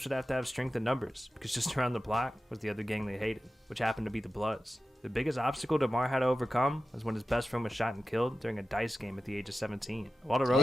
would have to have strength in numbers, because just around the block was the other gang they hated, which happened to be the Bloods. The biggest obstacle DeMar had to overcome was when his best friend was shot and killed during a dice game at the age of 17. While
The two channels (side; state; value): both; normal; correlation 0.91